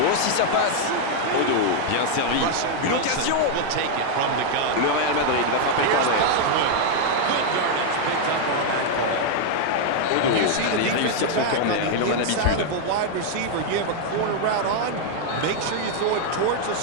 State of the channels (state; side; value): different; both; correlation 0.00